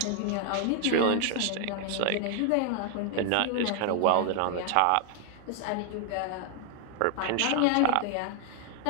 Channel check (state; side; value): different; both; correlation 0.00